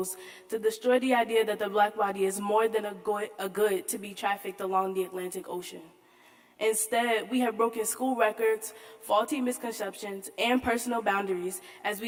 to destroy the idea that the Black body is more than a good to be trafficked along the Atlantic Ocean. Instead, we have broken school records, faulty misconceptions, and personal boundaries as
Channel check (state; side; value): identical; both; correlation 1.00